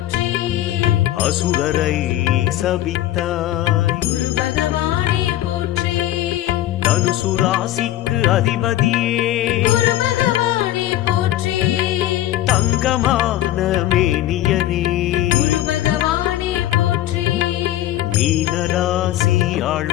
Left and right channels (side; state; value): right; quieter; 13.7 dB